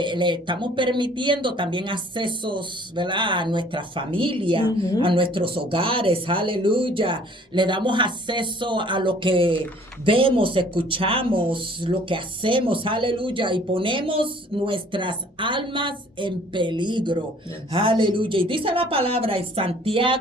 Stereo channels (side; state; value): both; normal; correlation 0.55